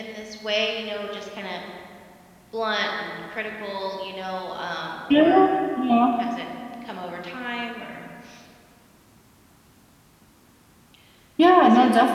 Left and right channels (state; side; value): identical; both; correlation 1.00